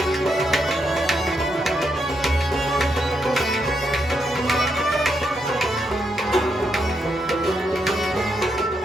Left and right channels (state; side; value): normal; both; correlation 0.80